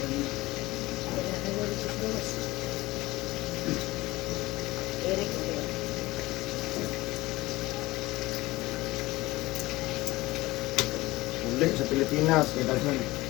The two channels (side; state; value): right; quieter; 19.4 dB